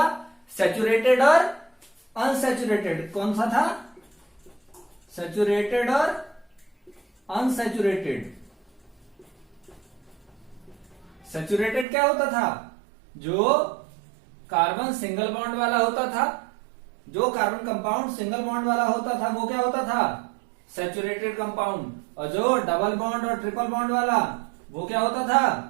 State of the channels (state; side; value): drops out; left; at 11.9 s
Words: सैचुरेटेड और अनसैचुरेटेड। कौन सा था? सैचुरेटेड और अनसैचुरेटेड। सैचुरेटेड क्या होता था? जो कार्बन सिंगल बॉन्ड वाला होता था, जो कार्बन कंपाउंड सिंगल बॉन्ड वाला होता था वो क्या होता था? Saturated compound. और जो डबल बॉन्ड और ट्रिपल बॉन्ड वाला वो क्या होता था?